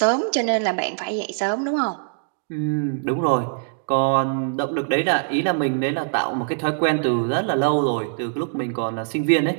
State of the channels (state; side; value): silent; left; digital silence